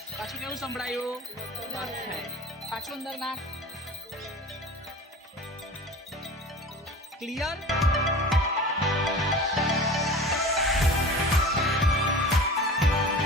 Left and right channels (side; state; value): both; normal; correlation 0.37